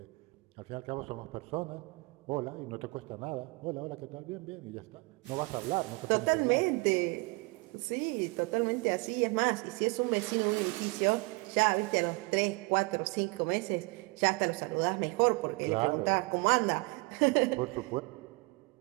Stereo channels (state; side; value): quieter; left; 27.3 dB